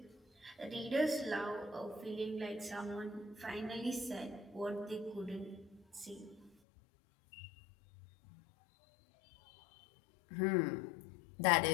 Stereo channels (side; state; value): right; drops out; at 6.5 s